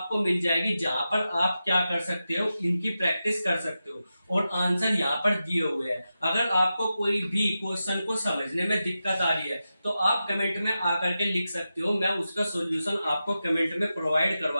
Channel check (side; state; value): both; inverted; correlation -0.91